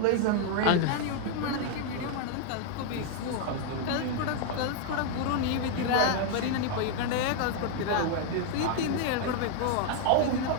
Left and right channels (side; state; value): both; different; correlation 0.01